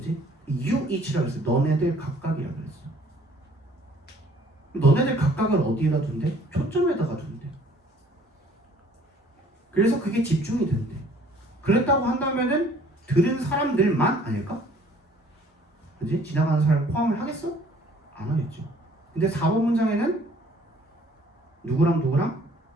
You each라고 했어. 너네들 각각이라고 그랬어. 너네들 각각을 어디에다 둔대? 초점에다가 둔대. 그래서 그게 집중이 된대. 그랬다고 한다면은 들은 사람들만 아닐까? 그지? 지나가는 사람 포함을 하겠어? 안 하겠죠. 근데 4번 문장에는 누구랑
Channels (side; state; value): both; normal; correlation 0.56